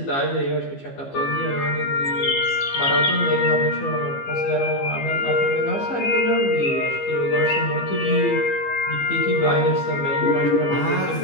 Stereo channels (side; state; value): right; late; 15 ms